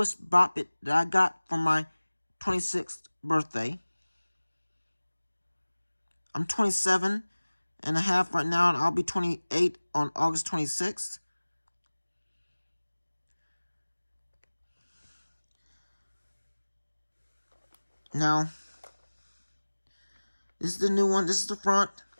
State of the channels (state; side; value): inverted; both; correlation -1.00